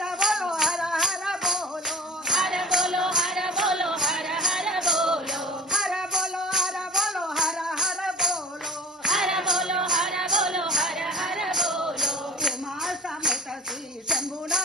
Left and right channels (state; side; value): normal; both; correlation 0.39